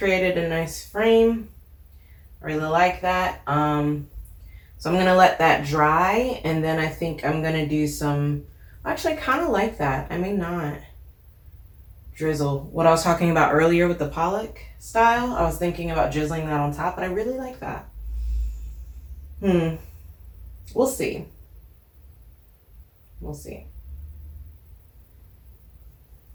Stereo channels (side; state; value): both; identical; correlation 1.00